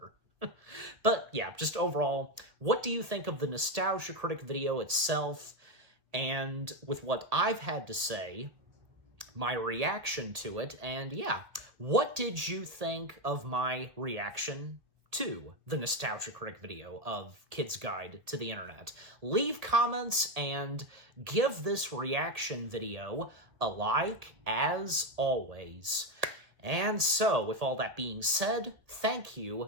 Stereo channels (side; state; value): left; late; 1.8 ms